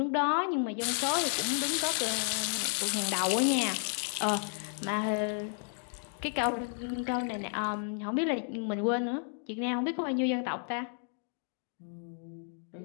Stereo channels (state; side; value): silent; right; 56 dB below the other